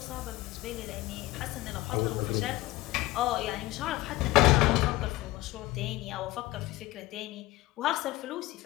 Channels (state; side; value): quieter; right; 18.5 dB